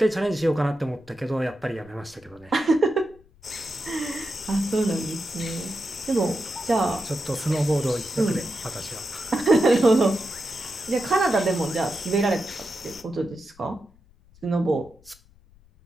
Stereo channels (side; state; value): left; noise; rumble, 29 dB below the sound